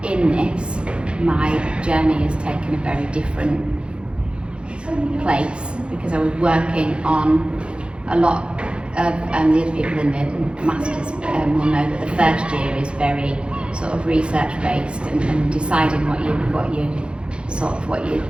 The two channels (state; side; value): late; left; 0.056 ms